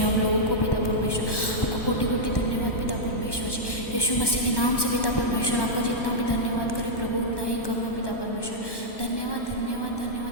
लोगों को पिता परमेश्वर आपको कोटि कोटि धन्यवाद पिता परमेश्वर जी। यीशु मसीह के नाम से पिता परमेश्वर आपका जितना भी धन्यवाद करे प्रभु उतना ही कम है पिता परमेश्वर। धन्यवाद धन्यवाद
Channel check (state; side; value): late; right; 1.1 ms